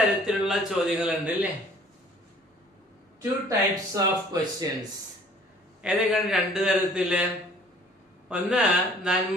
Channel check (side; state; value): both; normal; correlation 0.54